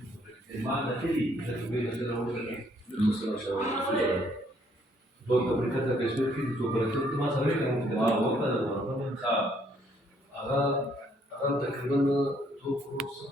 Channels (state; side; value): normal; both; correlation 0.67